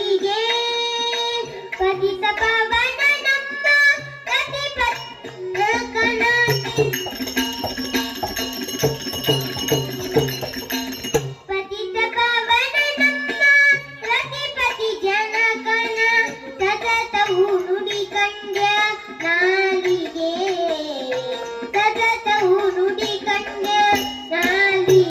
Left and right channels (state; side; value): identical; both; correlation 1.00